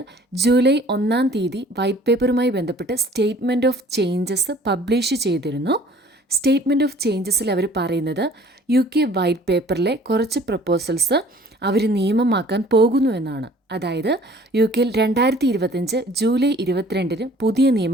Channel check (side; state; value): both; normal; correlation 0.53